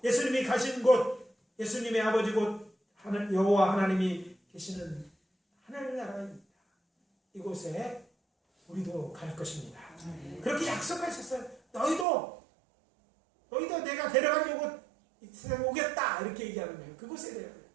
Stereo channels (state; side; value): drops out; left; at 12.1 s